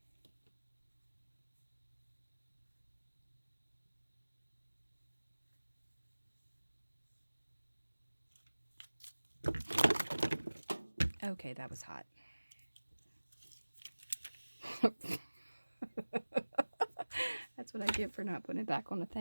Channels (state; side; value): inverted; both; correlation -1.00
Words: Okay, that was hot. That's what I get for not putting it back on the